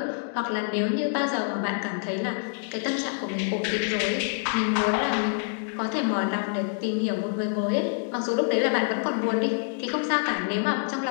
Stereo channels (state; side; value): silent; right; digital silence